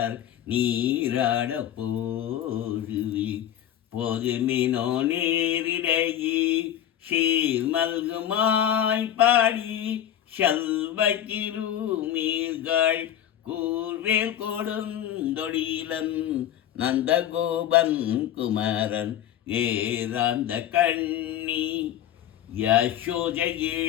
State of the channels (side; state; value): right; quieter; 11.0 dB